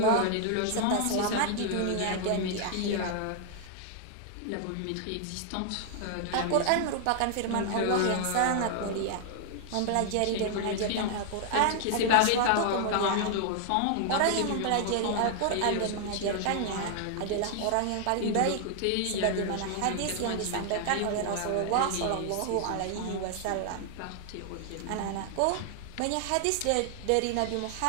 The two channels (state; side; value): different; both; correlation 0.00